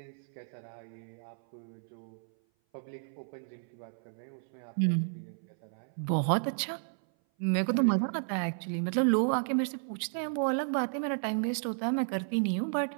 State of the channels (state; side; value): silent; left; 56 dB below the other